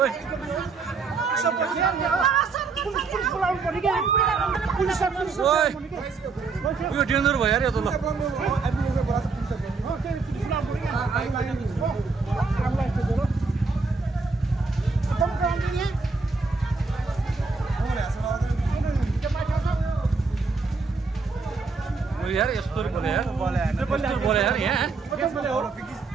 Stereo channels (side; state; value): left; quieter; 4.3 dB